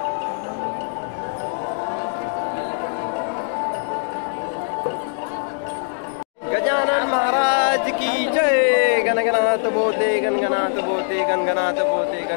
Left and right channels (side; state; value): right; silent; digital silence